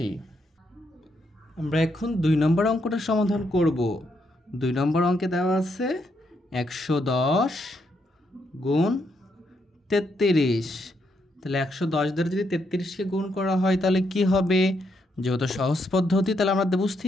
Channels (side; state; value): both; normal; correlation 0.77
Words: আমরা এখন 2 নম্বর অঙ্কটা সমাধান করব। 2 নম্বর অঙ্কে দেওয়া আছে 110 গুণ 33। তাহলে 110 দ্বারা যদি 33কে গুণ করা হয় তাহলে কি হবে, যেহেতু সহজ পদ্ধতি তাহলে আমরা